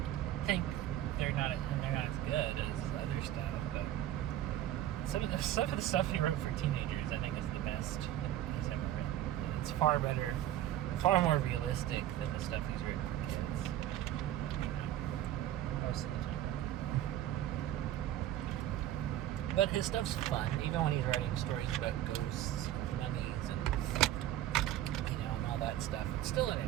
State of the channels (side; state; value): left; quieter; 12.6 dB